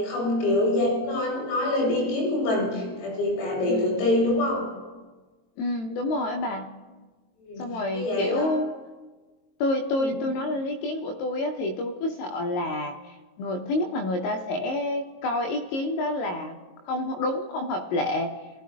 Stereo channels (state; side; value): late; right; 22 ms